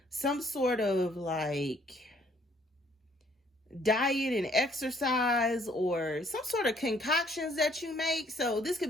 some sort of like diet and exercise, or some sort of concoctions that you make. So this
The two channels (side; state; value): both; normal; correlation 0.64